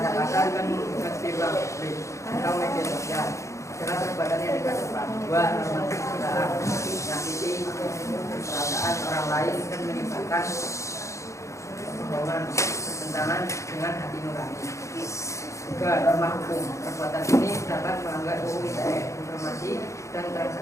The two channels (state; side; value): late; right; 0.15 ms